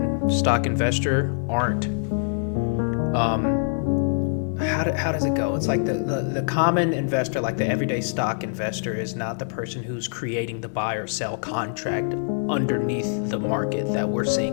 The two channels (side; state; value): right; silent; digital silence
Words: stock investor aren't. How does it go? It's like the common investor, like the everyday stock investor, is not the person who's creating the buy or sell contract underneath the market that we're